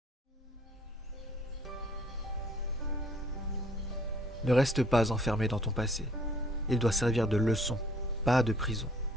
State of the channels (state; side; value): normal; both; correlation 0.60